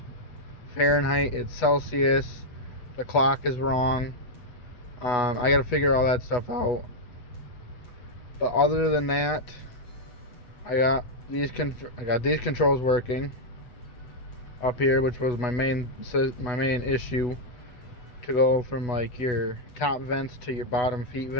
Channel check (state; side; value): late; right; 8.1 ms